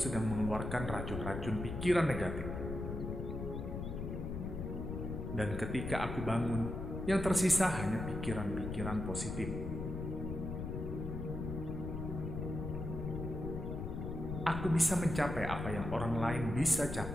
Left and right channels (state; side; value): noise; left; rumble, 5 dB below the sound